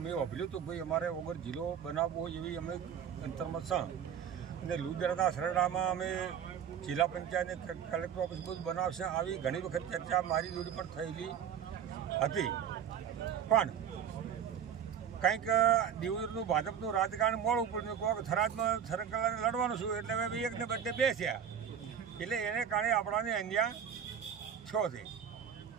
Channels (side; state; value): left; quieter; 8.4 dB